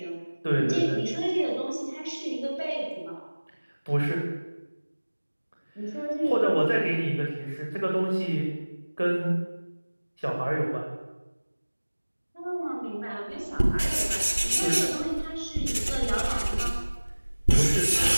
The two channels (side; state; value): both; inverted; correlation -1.00